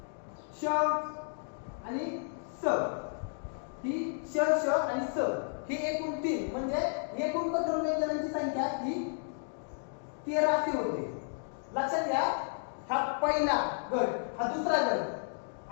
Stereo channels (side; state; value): right; silent; digital silence